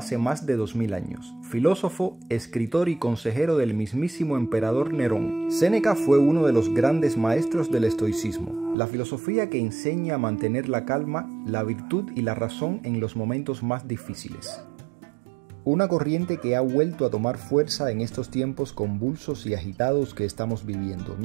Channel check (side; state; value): left; drops out; at 8.8 s